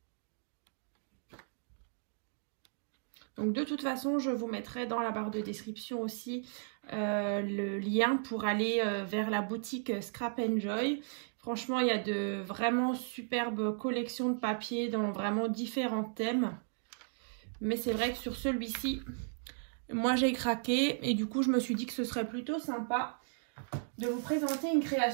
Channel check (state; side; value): silent; left; digital silence